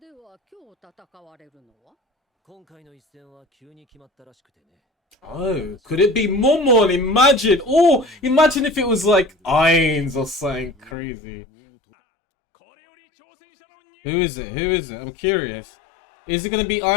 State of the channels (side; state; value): right; drops out; at 11.0 s